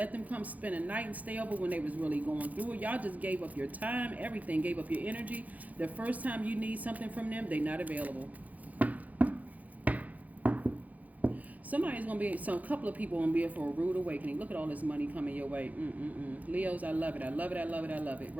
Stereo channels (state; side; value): late; left; 0.077 ms